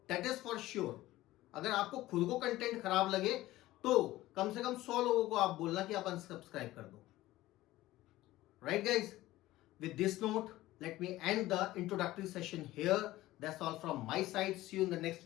That is for sure. अगर आपको खुद को कंटेंट खराब लगे तो कम से कम 100 लोगों को आप बोलना कि आप अनसब्सक्राइब कर दो। Right guys, with this note, let me end the introductory session here. That's all from my side. See you in the next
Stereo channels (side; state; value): right; quieter; 16.6 dB